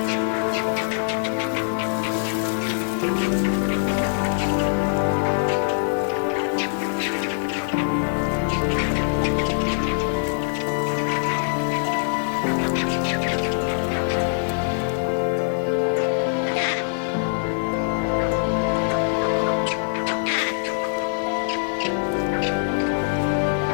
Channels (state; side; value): silent; right; 63 dB below the other